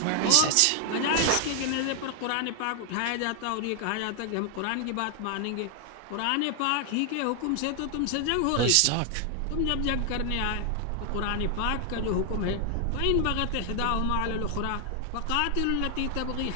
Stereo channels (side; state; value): both; different; correlation 0.00